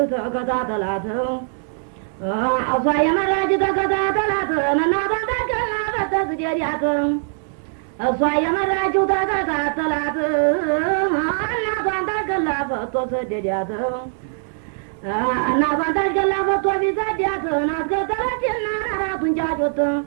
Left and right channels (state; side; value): silent; left; digital silence